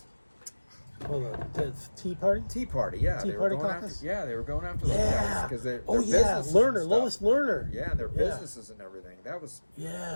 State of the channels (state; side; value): inverted; both; correlation -1.00